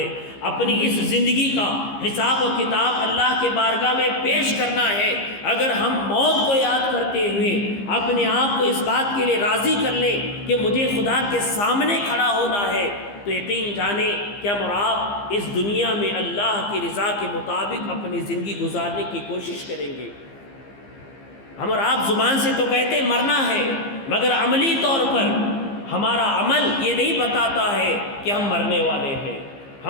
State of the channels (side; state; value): right; late; 15 ms